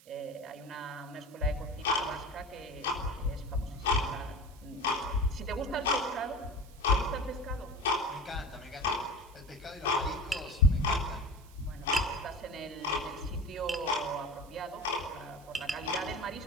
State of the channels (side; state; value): right; noise; hiss, 25 dB below the sound